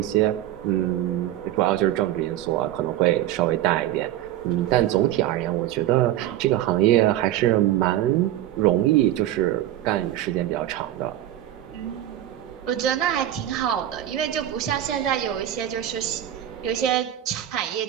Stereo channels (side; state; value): left; quieter; 12.8 dB